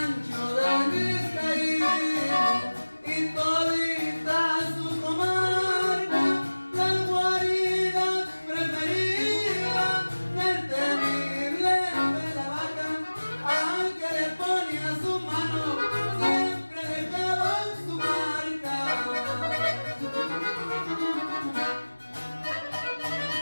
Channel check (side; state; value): both; inverted; correlation -1.00